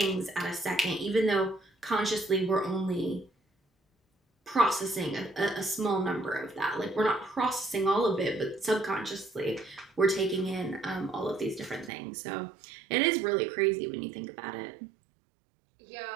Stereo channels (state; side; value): drops out; left; at 11.9 s